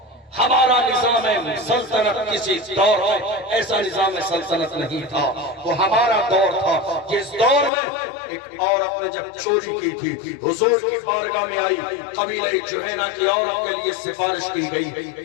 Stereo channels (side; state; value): right; drops out; at 7.7 s